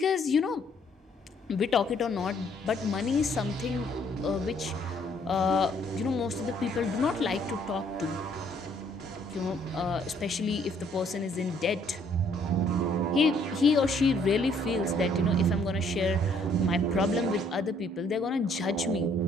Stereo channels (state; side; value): normal; both; correlation 0.64